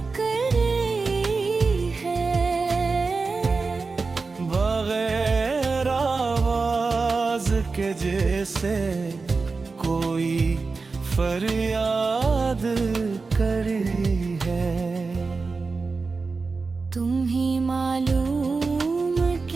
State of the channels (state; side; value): quieter; left; 4.2 dB